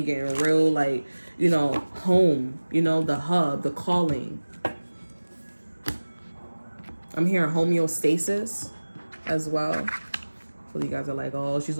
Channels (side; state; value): both; inverted; correlation -1.00